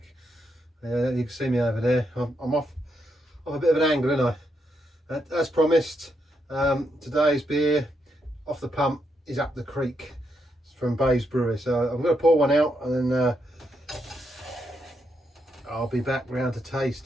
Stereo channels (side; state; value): both; normal; correlation 0.80